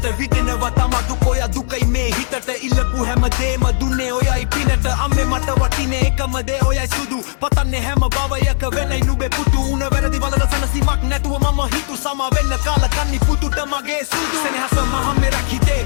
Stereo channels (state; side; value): silent; right; 61 dB below the other